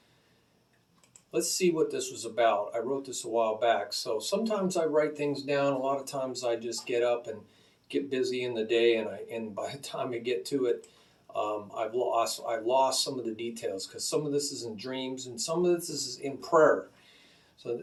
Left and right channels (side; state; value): both; identical; correlation 1.00